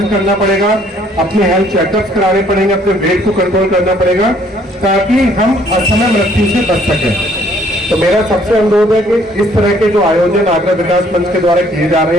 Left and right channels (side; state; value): both; normal; correlation 0.62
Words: करना पड़ेगा, अपने हेल्थ चेकअप्स कराने पड़ेंगे, अपने वेट को कंट्रोल करना पड़ेगा ताकि हम असमय मृत्यु से बच सकें। तो मेरा सबसे अनुरोध है कि इस तरह के जो आयोजन आगरा विकास मंच के द्वारा किए जा